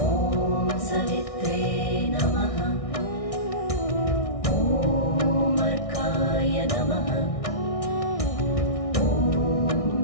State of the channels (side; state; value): right; late; 1.6 ms